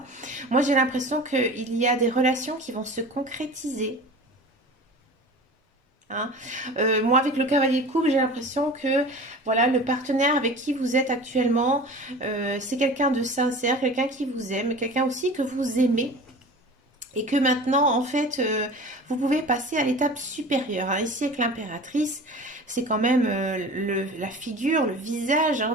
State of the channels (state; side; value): normal; both; correlation 0.38